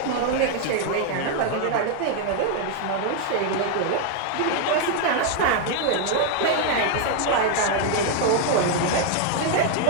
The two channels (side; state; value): both; different; correlation 0.00